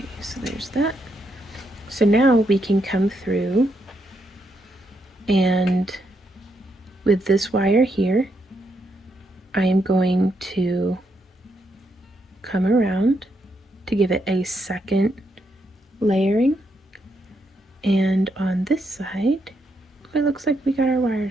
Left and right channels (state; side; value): normal; both; correlation 0.79